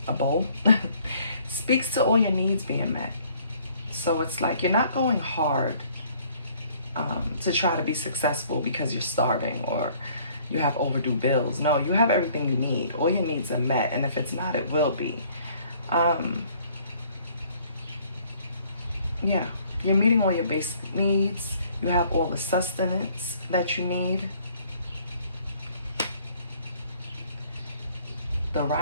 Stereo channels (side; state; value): both; inverted; correlation -0.59